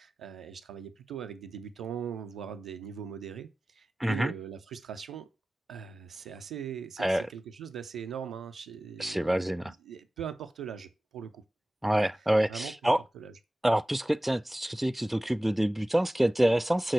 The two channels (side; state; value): both; normal; correlation 0.96